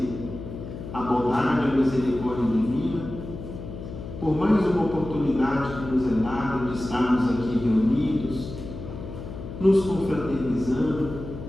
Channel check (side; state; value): left; noise; hum, 10 dB below the sound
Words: a bondade e a misericórdia divina por mais uma oportunidade que nos é dada de estarmos aqui reunidos, nos confraternizando